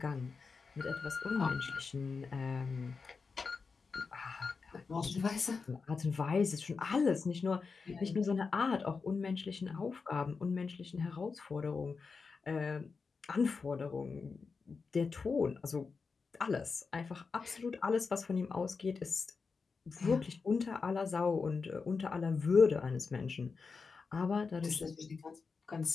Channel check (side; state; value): right; quieter; 4.8 dB